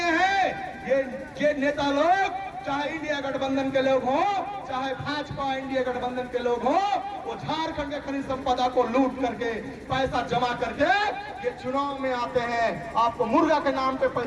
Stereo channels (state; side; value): identical; both; correlation 1.00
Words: है ये नेता लोग, चाहे इंडिया गठबंधन के लोग हो, चाहे भाजपा इंडिया गठबंधन के लोग हो, वो झारखंड के खनिज संपदा को लूट करके, पैसा जमा करके ये चुनाव में आते हैं। आपको मुर्गा के नाम पे